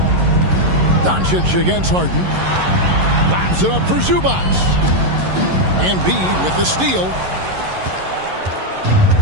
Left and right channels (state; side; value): late; left; 11 ms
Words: Doncic against Harden. Lobs it up for Zubac. Embiid with the steal.